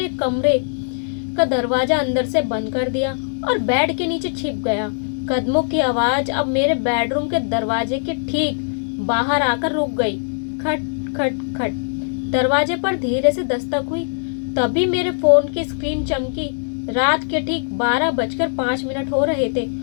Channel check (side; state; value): right; silent; digital silence